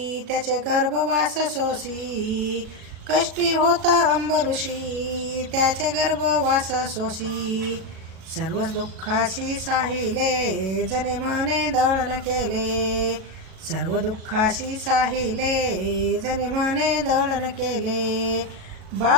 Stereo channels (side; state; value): left; late; 37 ms